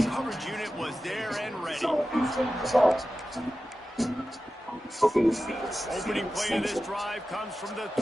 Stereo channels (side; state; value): both; normal; correlation 0.94